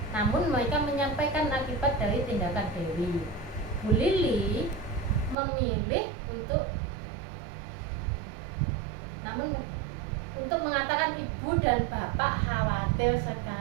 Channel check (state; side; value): drops out; left; at 5.4 s